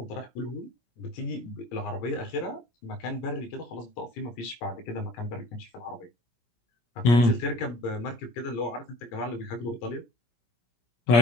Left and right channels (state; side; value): late; right; 17 ms